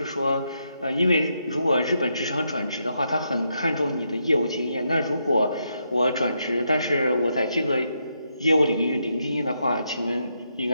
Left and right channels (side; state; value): both; inverted; correlation -0.80